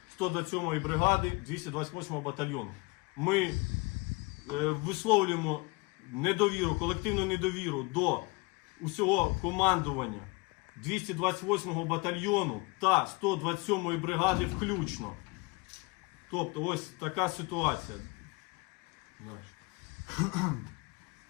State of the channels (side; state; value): right; quieter; 26.2 dB